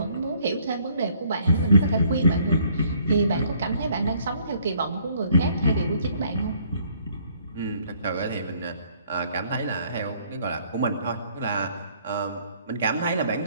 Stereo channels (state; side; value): inverted; both; correlation -0.63